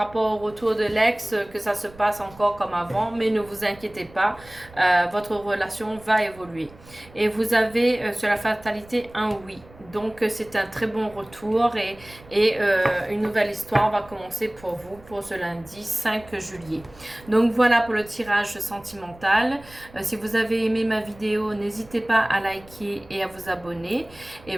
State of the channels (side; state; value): right; noise; rumble, 23 dB below the sound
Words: au retour de l'ex, que ça se passe encore comme avant, mais ne vous inquiétez pas, votre relation va évoluer. Et vous avez sur la fatalité un oui. Donc c'est un très bon retour et une nouvelle histoire va commencer pour vous pour ce lundi 5 juillet. Donc voilà pour le tirage sentimental. Si vous avez aimé ma vidéo, n'hésitez pas à liker et à vous abonner. Et